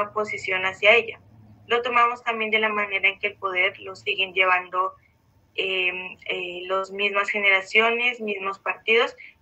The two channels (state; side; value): identical; both; correlation 1.00